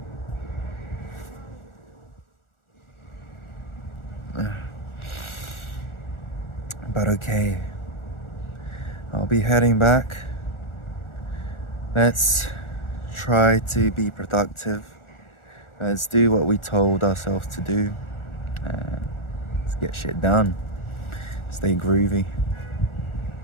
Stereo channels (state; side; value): late; right; 1.4 ms